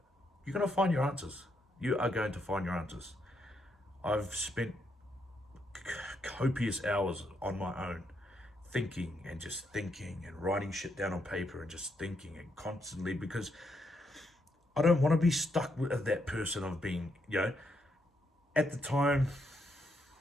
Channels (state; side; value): normal; both; correlation 0.78